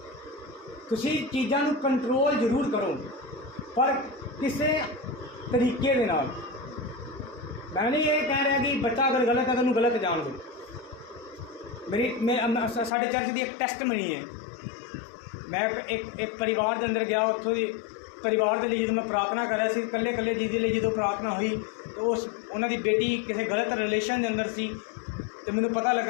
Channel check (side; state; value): right; drops out; at 12.9 s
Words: ਤੁਸੀਂ ਚੀਜ਼ਾਂ ਨੂੰ ਕੰਟਰੋਲ ਜ਼ਰੂਰ ਕਰੋ, ਪਰ ਕਿਸੇ ਤਰੀਕੇ ਦੇ ਨਾਲ। ਮੈਂ ਨਹੀਂ ਇਹ ਕਹਿ ਰਿਹਾ ਕਿ ਬੱਚਾ ਅਗਰ ਗਲਤ ਹੈ ਤਾਂ ਉਹਨੂੰ ਗਲਤ ਜਾਣ ਦਿਓ। ਸਾਡੇ ਚਰਚ ਦੀ ਇੱਕ ਟੈਸਟਮਨੀ ਹੈ। ਮੈਂ ਇੱਕ ਪਰਿਵਾਰ ਦੇ ਅੰਦਰ ਗਿਆ, ਉੱਥੋਂ ਦੀ ਪਰਿਵਾਰ ਦੇ ਲਈ ਜਦੋਂ ਮੈਂ ਪ੍ਰਾਰਥਨਾ ਕਰ ਰਿਹਾ ਸੀ, ਇਕੱਲੇ ਜੀ ਦੇ ਲਈ ਜਦੋਂ ਪ੍ਰਾਰਥਨਾ ਹੋਈ, ਉਹਨਾਂ ਦੀ ਬੇਟੀ ਕਿਸੇ ਗਲਤ ਰਿਲੇਸ਼ਨ ਦੇ ਅੰਦਰ ਸੀ ਅਤੇ ਮੈਨੂੰ ਪਤਾ